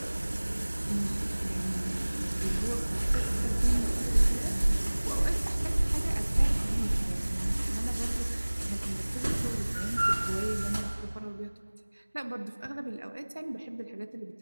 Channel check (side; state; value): both; inverted; correlation -1.00